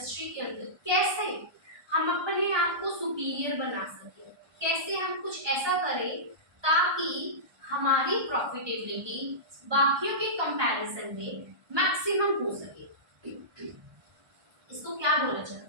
के अंदर कैसे हम अपने आप को सुपीरियर बना सके, कैसे हम कुछ ऐसा करें ताकि हमारी प्रॉफिटेबिलिटी बाकियों के कंपैरिजन में मैक्सिमम हो सके। इसको क्या बोला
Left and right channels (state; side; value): late; left; 1.2 ms